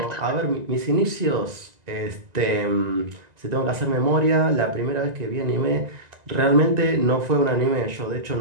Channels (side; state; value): left; late; 1.9 ms